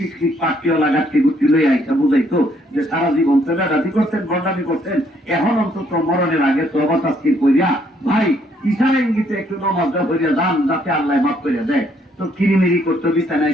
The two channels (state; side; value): normal; both; correlation 0.69